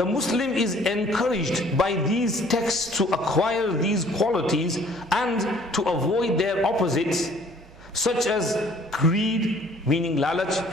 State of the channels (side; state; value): right; noise; hum, 23 dB below the sound